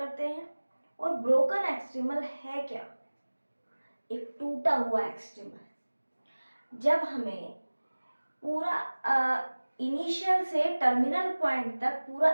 हैं। और ब्रोकन एक्सट्रीमल है क्या? एक टूटा हुआ एक्सट्रीमल। जब हमें पूरा इनिशियल से टर्मिनल पॉइंट तक पूरा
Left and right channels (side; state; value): both; inverted; correlation -1.00